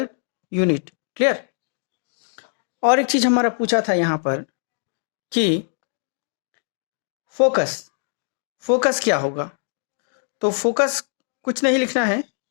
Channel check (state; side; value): silent; right; digital silence